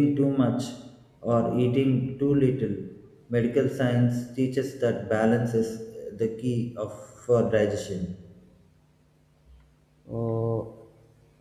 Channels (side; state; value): both; identical; correlation 1.00